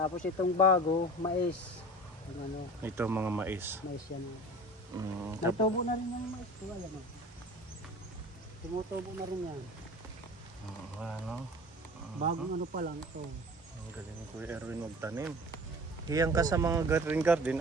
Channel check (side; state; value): both; normal; correlation 0.40